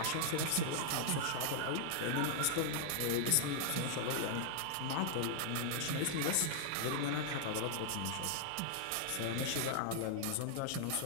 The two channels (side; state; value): both; different; correlation -0.01